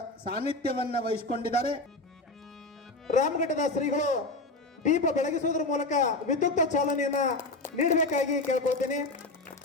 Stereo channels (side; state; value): right; quieter; 3.0 dB